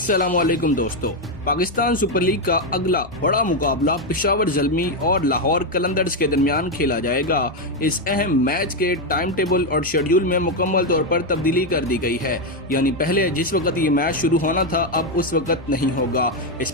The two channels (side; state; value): both; normal; correlation 0.05